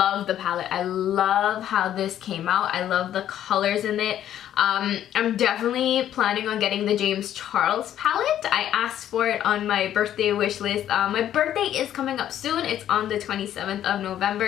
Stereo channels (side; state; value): right; quieter; 11.2 dB